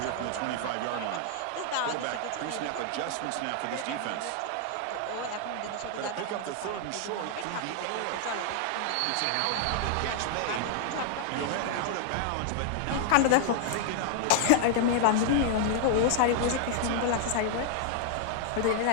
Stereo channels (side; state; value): both; different; correlation -0.01